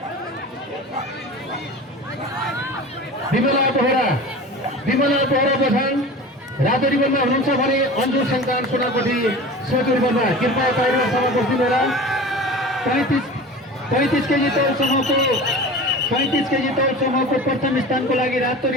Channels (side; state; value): both; normal; correlation 0.35